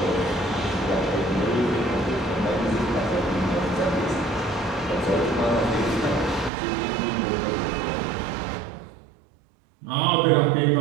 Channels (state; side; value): drops out; left; at 6.5 s